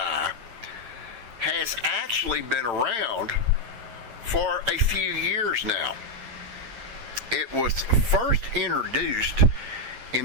has actually been around for a few years now. It was first introduced in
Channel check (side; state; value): left; late; 8.8 ms